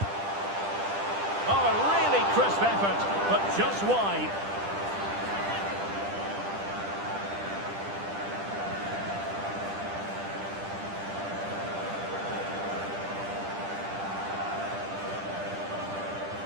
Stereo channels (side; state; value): left; late; 10 ms